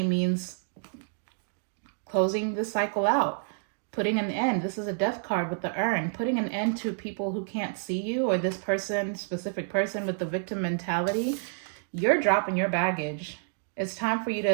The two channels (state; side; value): silent; left; digital silence